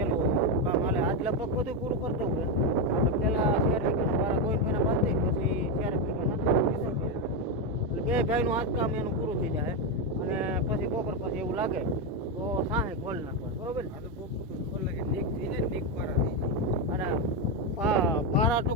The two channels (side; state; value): both; normal; correlation 0.08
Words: કામ હાલે. આજ લગભગ બધું પૂરું કરતું હોય. આપણે પહેલાં 4 વીઘાના વાળા ગોવિંદભાઈના બાંધી પછી 4 વીઘાના એટલે 2 ભાઈનું આજ કામ એનું પૂરું થઈ જાય. અને પછી બપોર પછી એવું લાગે તો સાહે ખોલ નાખવા. બરોબર ને? આ તો બહુ ખોલે કે નીક થઈ જાય, નીક પારા થઈ જાય. અને પારા